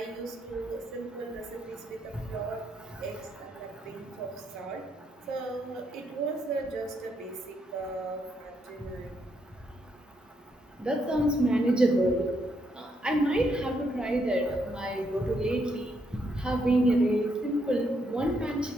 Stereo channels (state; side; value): normal; both; correlation 0.76